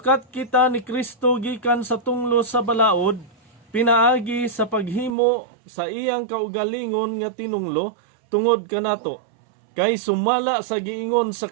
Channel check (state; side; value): drops out; left; at 5.1 s